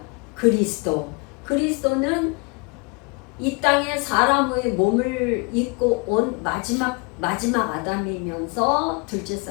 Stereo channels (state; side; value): quieter; right; 30.5 dB